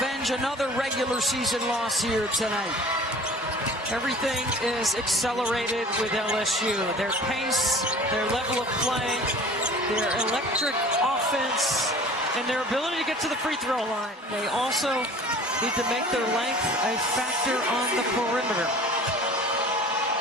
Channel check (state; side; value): normal; both; correlation 0.45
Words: another regular season loss here tonight. Everything is accelerated with LSU. Their pace, their level of play, their electric offense, and their ability to get to the free throw line. They also need to make their length a factor on the perimeter.